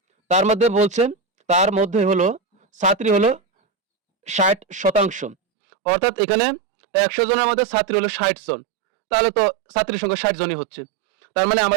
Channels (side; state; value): left; drops out; at 5.4 s